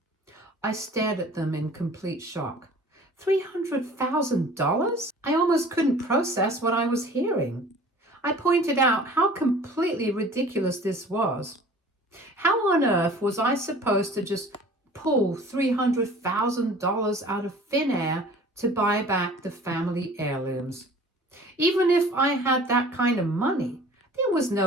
I stared at them in complete shock. $300,000? I almost couldn't process what I was hearing. I pointed out how completely ridiculous this was. How on earth was I supposed to just pull $300,000 out of thin air to buy back the family heirlooms? Even if I had that kind of money, there was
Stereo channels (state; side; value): normal; both; correlation 0.46